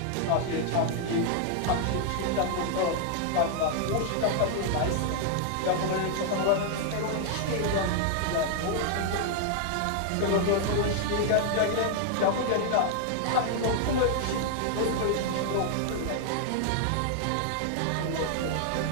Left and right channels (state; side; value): different; both; correlation 0.00